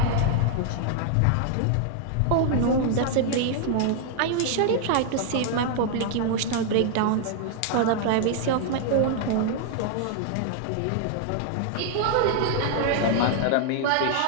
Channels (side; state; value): both; different; correlation 0.00